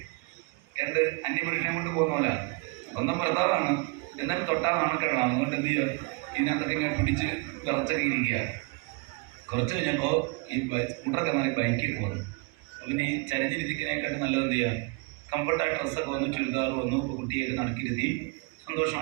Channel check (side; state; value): left; quieter; 27.7 dB